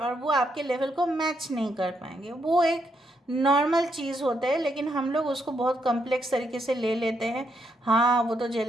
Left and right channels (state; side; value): normal; both; correlation 0.78